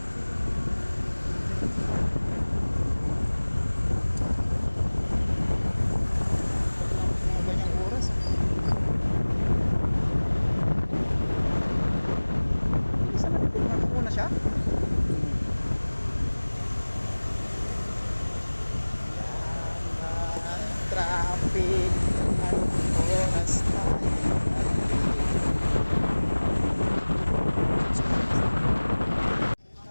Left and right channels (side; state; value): both; inverted; correlation -1.00